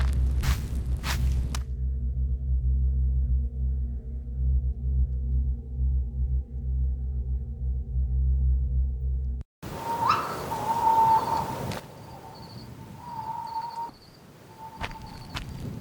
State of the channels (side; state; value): both; identical; correlation 1.00